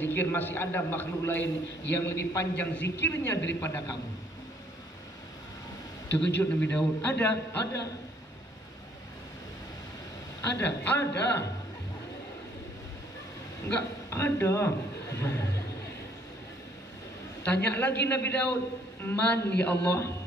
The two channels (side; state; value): both; normal; correlation 0.64